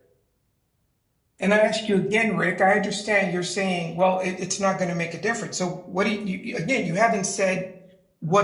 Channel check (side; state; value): both; identical; correlation 1.00